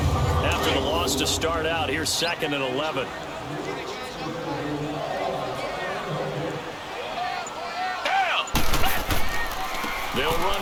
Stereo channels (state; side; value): identical; both; correlation 1.00